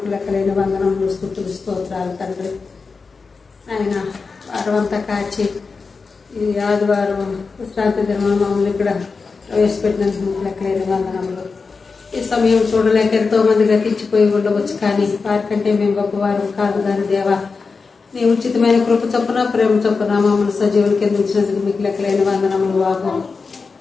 లెక్కలేని వందనములు స్తుతులు స్తోత్రాలు తండ్రి ఆయన వారం అంతా కాచి ఈ ఆదివారం విశ్రాంతి దినం మమ్మల్ని ఇక్కడ ప్రవేశపెట్టినందుకు మీకు లెక్కలేని వందనములు. ఈ సమయం చూడలేక ఎంతో మంది గతించిపోయి ఉండవచ్చు, కానీ వారికంటే మేము గొప్పవారు కాదు. దాని దేవా, నీ ఉచితమైన కృప చొప్పున ప్రేమ చొప్పున మమ్మల్ని సజీవులు కింద ఉంచినందుకు మీకు లెక్కలేని వందనములు బాబు.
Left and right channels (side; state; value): right; quieter; 4.6 dB